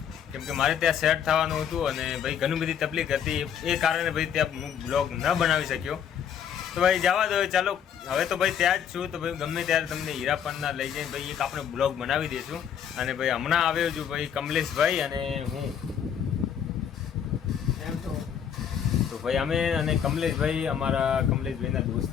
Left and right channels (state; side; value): quieter; right; 8.5 dB